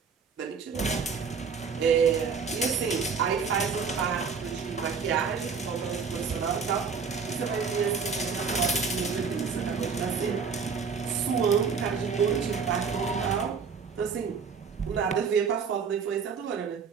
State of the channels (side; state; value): left; quieter; 5.7 dB